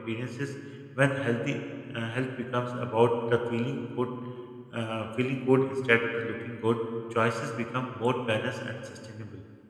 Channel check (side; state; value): both; identical; correlation 1.00